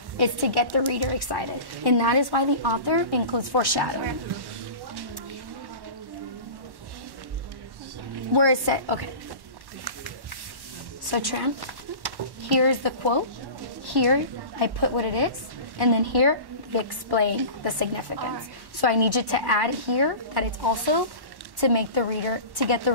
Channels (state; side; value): late; left; 1.1 ms